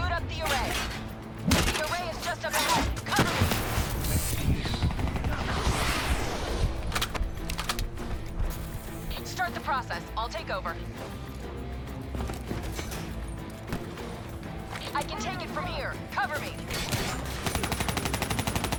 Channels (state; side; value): identical; both; correlation 1.00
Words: up the array. The array is just up ahead. Cover me! Start the process. I'll take over. I can take it from here. Cover me.